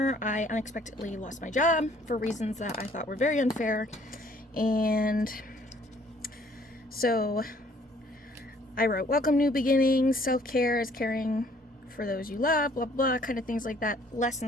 I unexpectedly lost my job for reasons that I thought were very unfair, and so I wrote, welcome new beginnings, self-care is caring for those you love, blah, blah, kind of things like that,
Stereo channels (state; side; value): normal; both; correlation 0.60